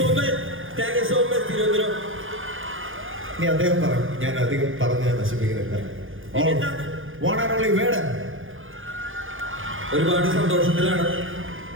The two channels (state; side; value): late; left; 0.58 ms